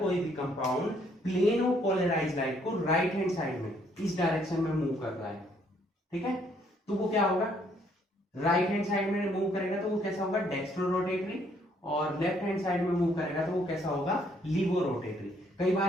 भी compound plane of polarise light को राइट हैंड साइड में इस डायरेक्शन में मूव कर रहा है, ठीक है, तो वो क्या होगा, राइट हैंड साइड में मूव करेगा तो वो कैसा होगा, डेक्स्ट्रो रोटेटरी, और लेफ्ट हैंड साइड में मूव करेगा तो वो कैसा होगा, लीवो रोटेटरी। कई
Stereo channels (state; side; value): normal; both; correlation 0.67